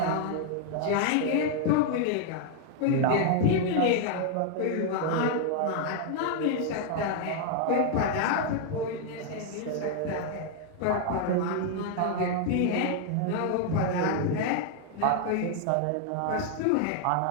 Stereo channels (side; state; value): both; different; correlation 0.00